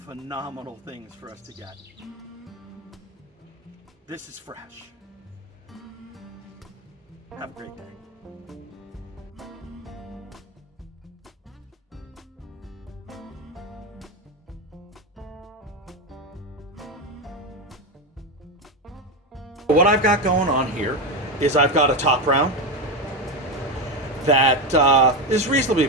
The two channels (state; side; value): normal; both; correlation 0.13